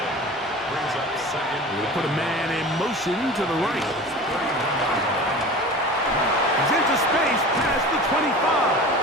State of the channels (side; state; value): both; normal; correlation 0.36